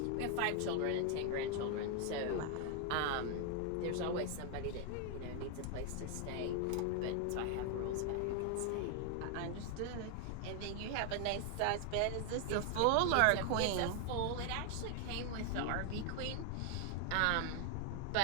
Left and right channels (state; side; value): different; both; correlation 0.00